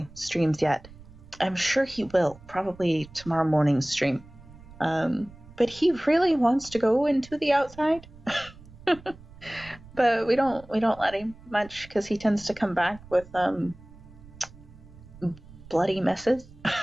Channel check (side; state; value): right; noise; rumble, 20 dB below the sound